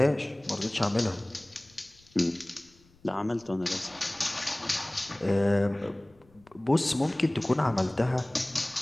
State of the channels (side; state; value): left; noise; rumble, 29 dB below the sound